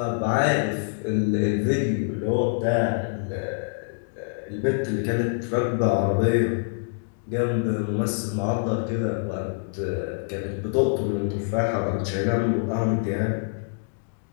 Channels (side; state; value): right; silent; digital silence